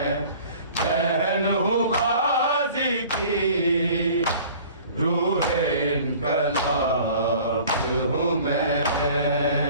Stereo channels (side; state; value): both; inverted; correlation -0.47